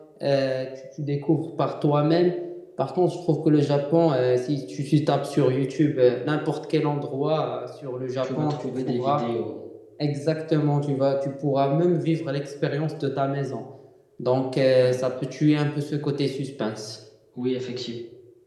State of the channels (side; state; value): both; identical; correlation 1.00